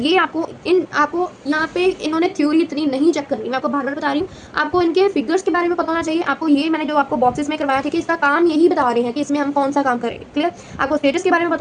आपको यहाँ पे इन्होंने थ्योरी इतनी नहीं चेक करनी, मैं आपको बार बार बता रही हूँ। आपको इनके फिगर्स के बारे में पता होना चाहिए। आपको ये मैंने जो आपको बॉक्सेस में करवाया था कि इसका काम यही बता रहे हैं कि इसमें हम कौन सा काम करेंगे। क्लियर? आपको स्टेटस के बारे में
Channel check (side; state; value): both; identical; correlation 1.00